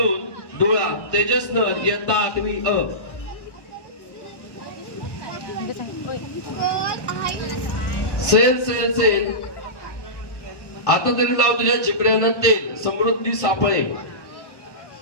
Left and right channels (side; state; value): right; late; 1.1 ms